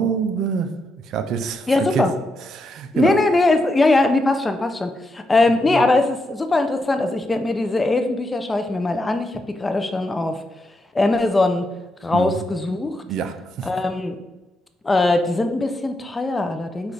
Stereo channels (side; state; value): both; normal; correlation 0.83